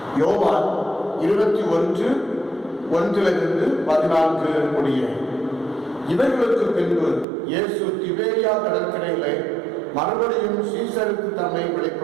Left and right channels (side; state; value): left; drops out; at 7.2 s